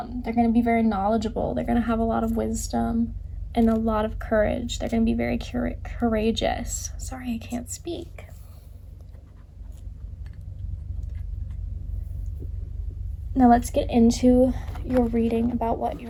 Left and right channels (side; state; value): both; identical; correlation 1.00